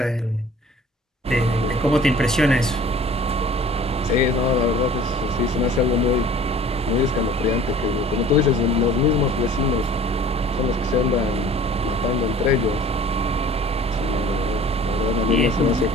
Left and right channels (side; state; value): both; normal; correlation 0.47